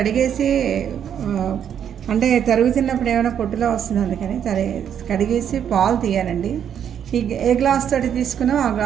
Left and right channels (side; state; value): left; quieter; 8.9 dB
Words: అంటే తరుగుతున్నప్పుడు ఏమైనా పొట్టులో వస్తుంది, అందుకని కడిగేసి పాలు తీయాలండి. ఏ గ్లాస్ తోటి తీసుకున్నామో ఆ